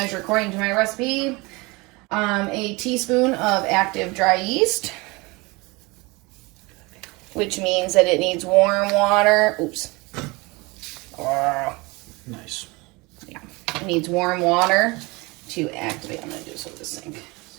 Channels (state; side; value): quieter; left; 24.9 dB